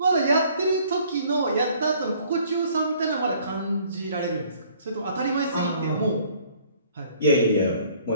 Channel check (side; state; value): both; inverted; correlation -0.58